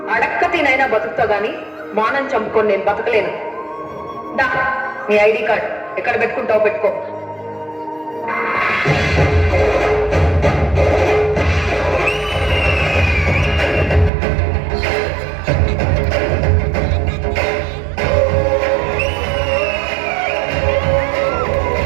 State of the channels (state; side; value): drops out; left; at 14.1 s